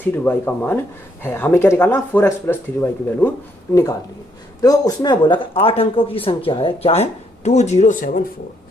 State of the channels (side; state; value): both; normal; correlation 0.72